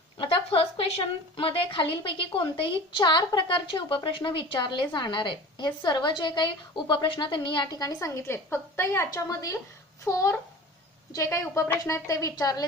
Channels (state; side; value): normal; both; correlation 0.38